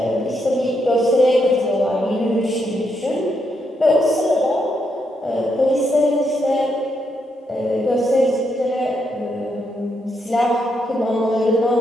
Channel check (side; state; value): both; normal; correlation 0.79